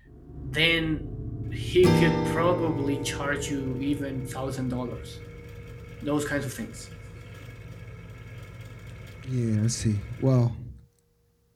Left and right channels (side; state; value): both; identical; correlation 1.00